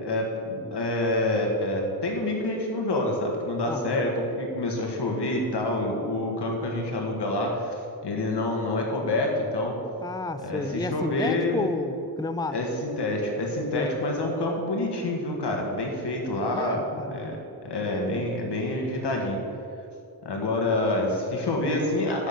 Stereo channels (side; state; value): both; normal; correlation 0.08